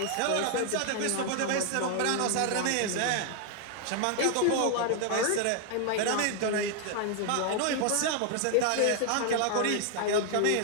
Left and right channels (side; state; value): both; different; correlation 0.00